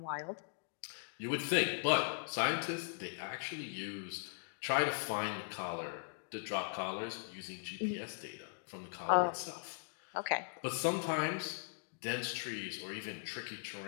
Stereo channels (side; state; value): right; silent; digital silence